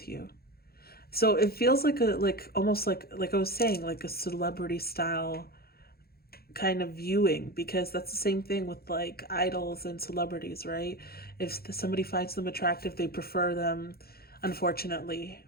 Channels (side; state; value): right; late; 0.45 ms